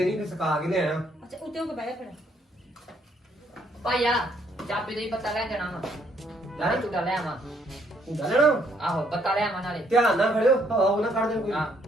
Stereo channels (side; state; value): both; normal; correlation 0.69